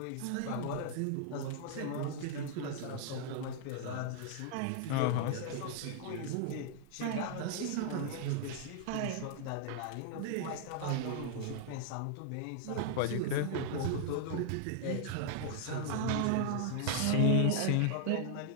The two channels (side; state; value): both; different; correlation 0.00